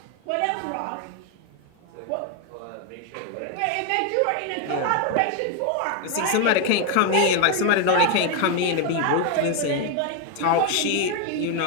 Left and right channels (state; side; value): different; both; correlation 0.01